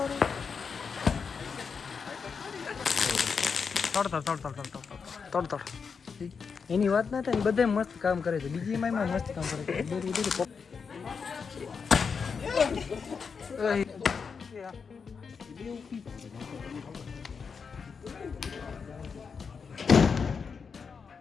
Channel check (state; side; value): quieter; right; 5.7 dB